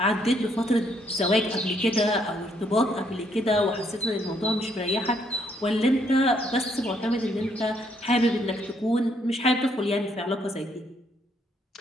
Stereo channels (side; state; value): both; normal; correlation 0.71